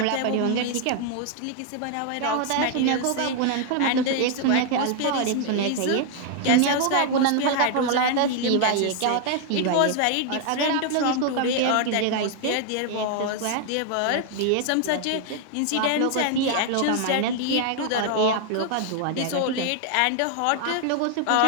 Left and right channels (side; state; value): both; different; correlation 0.00